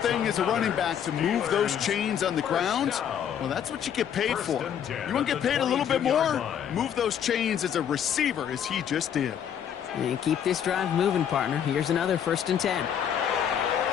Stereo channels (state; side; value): quieter; right; 8.9 dB